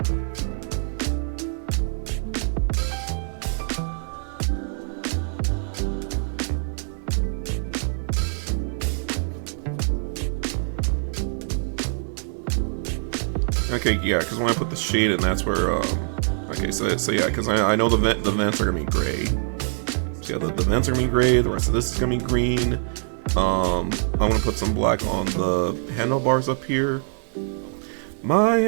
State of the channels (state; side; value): silent; left; 57 dB below the other